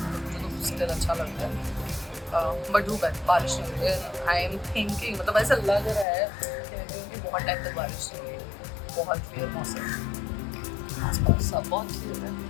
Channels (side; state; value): right; drops out; at 6.1 s